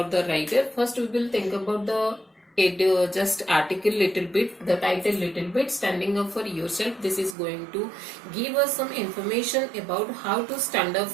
the writer, first we will think about the just article little bit, the title little bit, standing up for yourself. This is going to give us some information about how to stand up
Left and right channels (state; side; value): drops out; left; at 7.4 s